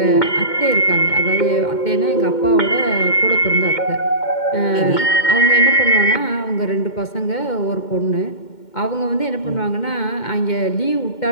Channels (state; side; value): late; right; 2.1 ms